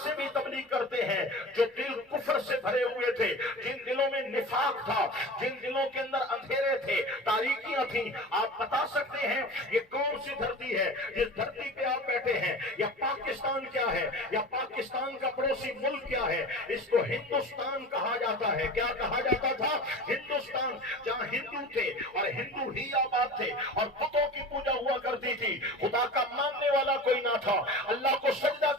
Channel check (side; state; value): both; normal; correlation 0.34